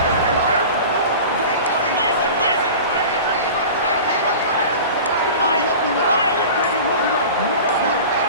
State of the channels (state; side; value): inverted; both; correlation -0.36